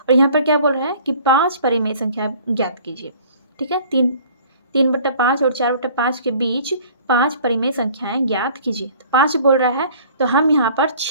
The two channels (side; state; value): both; inverted; correlation -0.51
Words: यहाँ पर क्या बोल रहा है कि 5 परिमेय संख्या ज्ञात कीजिए। ठीक है, 3/5 और 4/5 के बीच 5 परिमेय संख्याएं ज्ञात कीजिए। तो 5 बोल रहा है तो हम यहाँ पर